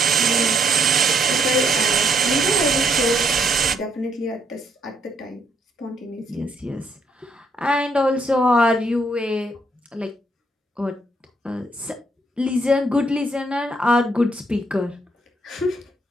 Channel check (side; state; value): both; normal; correlation 0.71